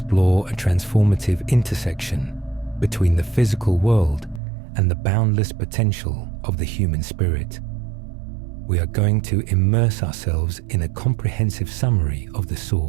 a transformative intersection between the physical world and the boundless potential of the human spirit. We are going to immerse ourselves in a comprehensive summary of The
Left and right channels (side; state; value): left; drops out; at 4.4 s